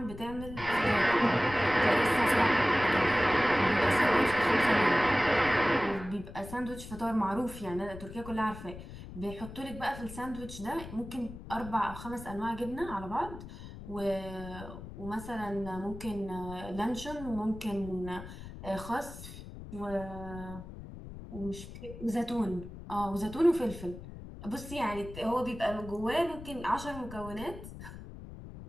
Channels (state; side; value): noise; left; rumble, 13 dB below the sound